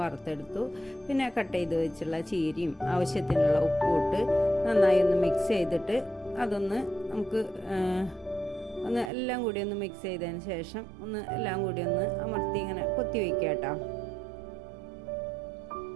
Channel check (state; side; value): drops out; left; at 9.1 s